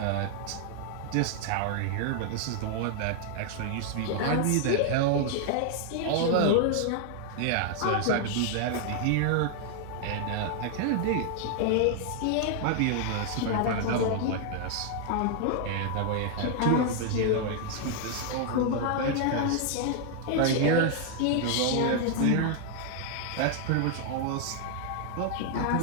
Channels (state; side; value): different; both; correlation 0.00